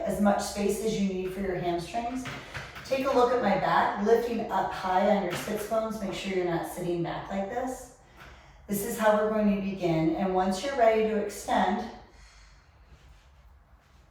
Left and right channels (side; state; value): both; identical; correlation 1.00